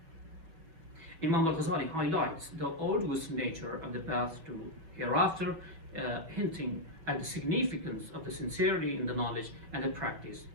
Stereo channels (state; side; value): late; left; 6.1 ms